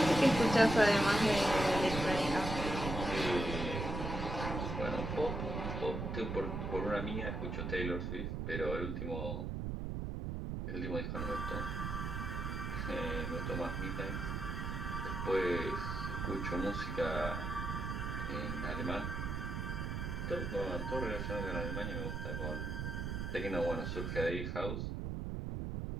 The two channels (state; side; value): noise; right; rumble, 3 dB below the sound